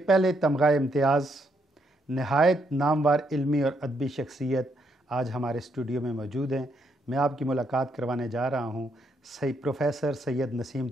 पहले तमगा इम्तियाज़, नहायत नामवर इल्मी और अदबी शख्सियत आज हमारे स्टूडियो में मौजूद हैं। मैं आपकी मुलाकात करवाने जा रहा हूँ प्रोफेसर सैयद नसीम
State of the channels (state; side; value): normal; both; correlation 0.75